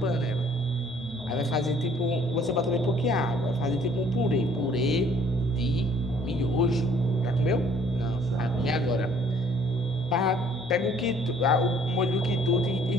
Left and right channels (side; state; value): both; normal; correlation 0.58